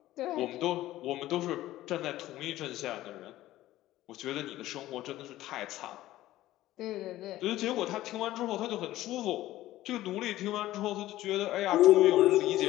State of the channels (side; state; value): right; quieter; 15.3 dB